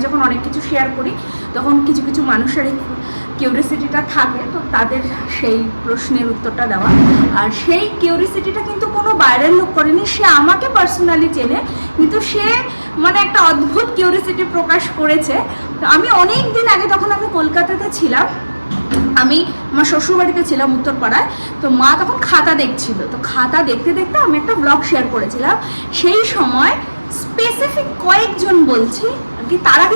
যখন অনেক কিছু শেয়ার করি তখন কিছু কিছু মানুষের এই কিউরিয়াসিটিটা থাকে, তো তাদের সেই প্রশ্নের উত্তরটা দেওয়া। আর সেই কিউরিয়াসিটিটা কিন্তু কোনো বাইরের লোক করেনি, সে আমাকে পার্সোনালি চেনে, কিন্তু সে মানে একটা অদ্ভুত কিউরিয়াসিটি প্রকাশ করেছে। তো আমি অনেক দিন আগে, তখন আমি কলকাতাতে ছিলাম, আমি আমার শ্বশুরবাড়িতে ছিলাম উত্তরপাড়ায়, তো মা তখন খাতা দেখছিল, তো খাতা দেখতে দেখতে আমি একটা ব্লগ শেয়ার করেছিলাম। সেই সময় স্পেসিফিক কয়েকজন বলছি কি, তারা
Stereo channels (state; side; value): inverted; both; correlation -1.00